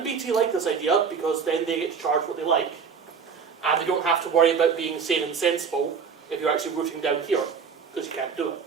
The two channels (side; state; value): left; quieter; 6.1 dB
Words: BT like this idea because then they get to charge what they like. And they don't have to worry about being sane and sensible if you're actually routing down here, because you can't do it.